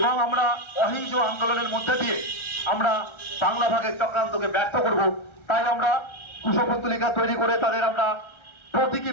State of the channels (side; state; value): right; late; 1.3 ms